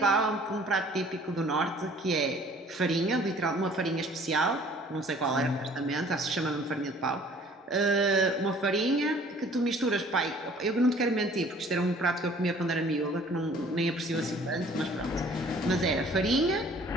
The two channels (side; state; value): both; normal; correlation 0.54